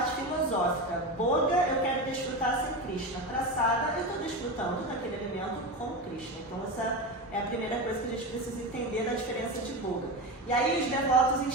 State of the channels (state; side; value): normal; both; correlation 0.21